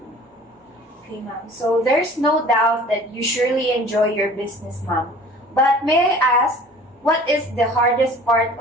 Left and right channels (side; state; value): both; normal; correlation 0.47